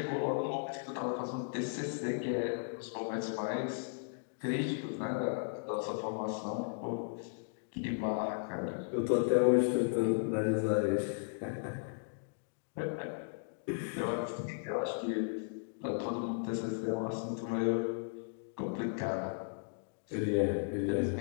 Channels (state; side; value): silent; right; digital silence